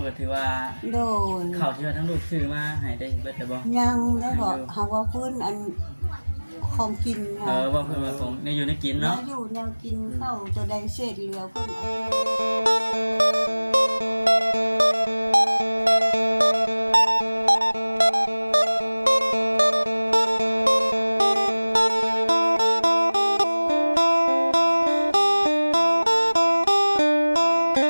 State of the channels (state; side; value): inverted; both; correlation -1.00